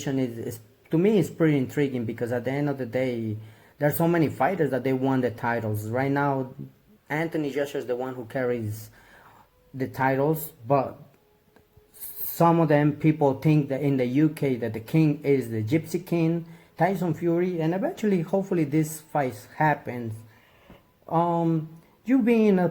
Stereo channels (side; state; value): both; identical; correlation 1.00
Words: is to me is pretty intriguing, because at the end of the day, there's so many fighters that they won the titles. Right now, Anthony Joshua is the one who carries the titles, but some of them people think that in the UK that the king is the Gypsy King, Tyson Fury, and eventually, hopefully, this fight happens. You being a